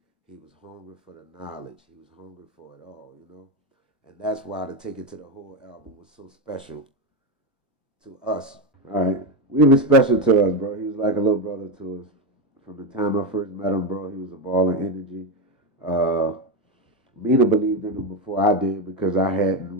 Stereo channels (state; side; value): normal; both; correlation 0.11